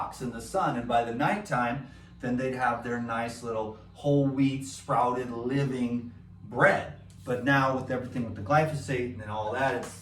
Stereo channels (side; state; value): both; identical; correlation 1.00